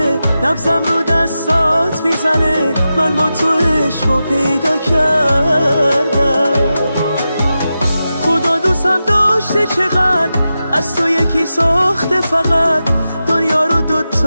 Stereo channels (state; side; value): inverted; both; correlation -0.91